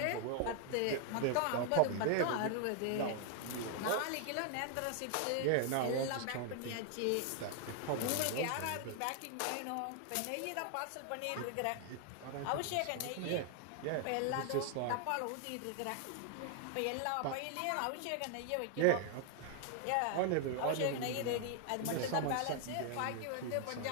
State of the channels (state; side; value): different; both; correlation 0.00